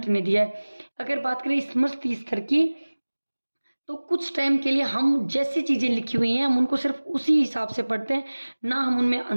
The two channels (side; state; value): both; inverted; correlation -1.00